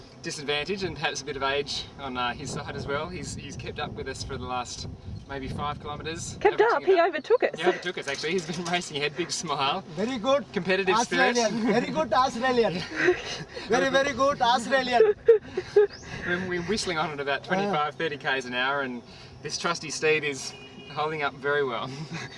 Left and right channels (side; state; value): both; identical; correlation 1.00